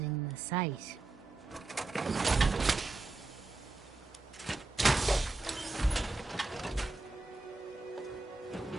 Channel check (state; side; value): quieter; left; 3.3 dB